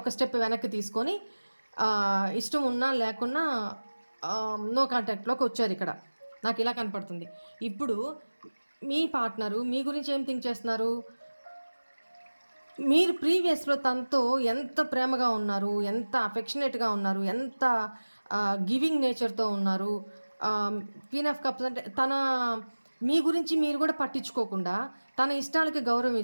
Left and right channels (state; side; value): inverted; both; correlation -1.00